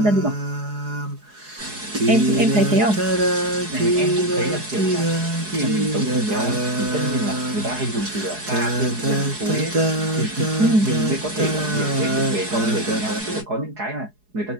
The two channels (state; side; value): late; left; 4.8 ms